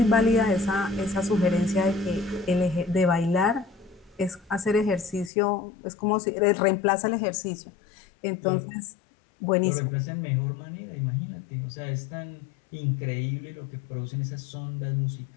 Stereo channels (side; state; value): right; drops out; at 5.3 s